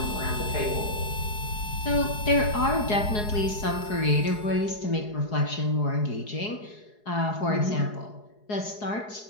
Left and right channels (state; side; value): late; right; 4.8 ms